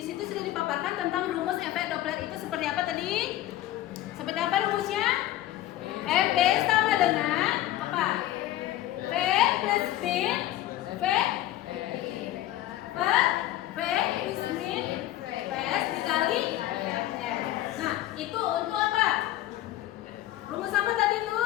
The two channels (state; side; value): quieter; right; 14.1 dB